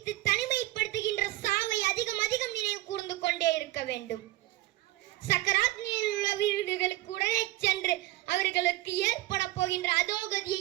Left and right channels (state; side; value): quieter; left; 17.4 dB